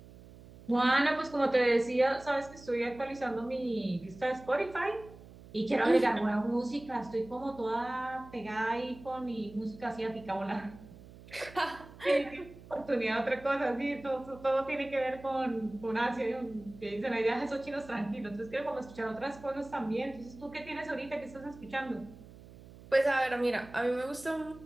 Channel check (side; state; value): right; noise; hum, 19 dB below the sound